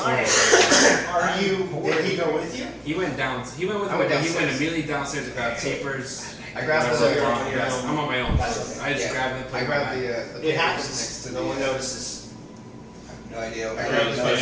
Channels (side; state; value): both; identical; correlation 1.00